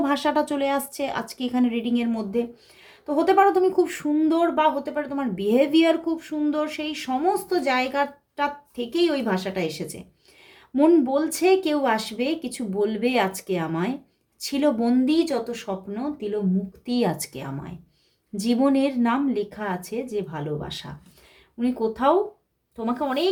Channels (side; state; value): both; identical; correlation 1.00